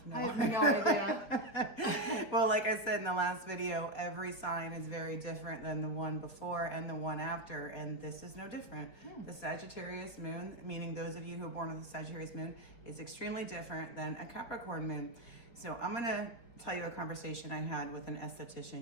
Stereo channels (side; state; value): right; late; 4.6 ms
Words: no idea. Well, like I said in the last video, every sign is very different than the one before and the one after, and this is no different. The Sagittarius moon, meaning those of you who are born with a Sagittarius moon, is extremely different than a Capricorn moon. So I'm going to tell you a conversation I had with an